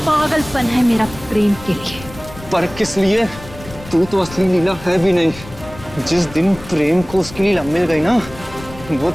पागलपन है मेरा प्रेम के लिए। पर किस लिए? तू तो असली लीला है भी नहीं। जिस दिन प्रेम को उसकी लीला मिल गई ना, वो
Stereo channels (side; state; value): left; noise; rumble, 16 dB below the sound